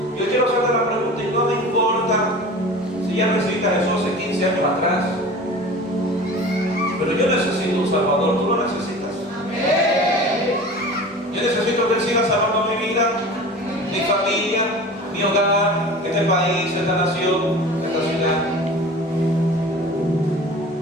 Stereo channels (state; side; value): normal; both; correlation 0.38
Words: Yo quiero hacerte la pregunta, y no me importa si ya recibiste a Jesús hace 15 años atrás, pero yo necesito un Salvador. ¿Tú lo necesitas? Amén. Yo necesito que Él siga salvando mi vida, mi familia, mi hogar, este país, esta nación, esta ciudad.